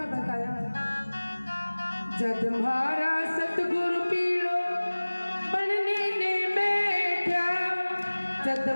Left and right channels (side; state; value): both; inverted; correlation -1.00